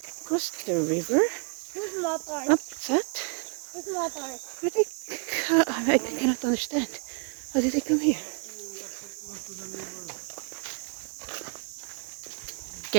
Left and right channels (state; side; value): quieter; left; 38.7 dB